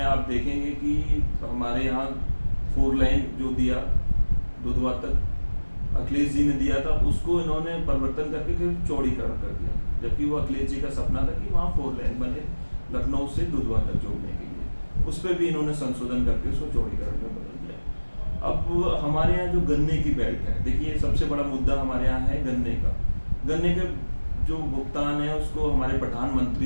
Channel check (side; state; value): both; inverted; correlation -1.00